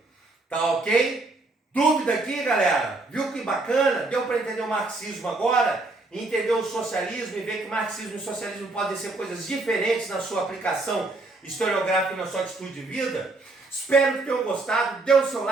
Tá ok? Dúvida aqui, galera? Viu que bacana? Deu para entender o marxismo agora? Entender o socialismo e ver que marxismo e socialismo podem ser coisas diferentes na sua aplicação historiográfica e na sua atitude de vida? Espero que tenham gostado. Dê o seu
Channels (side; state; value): left; quieter; 3.2 dB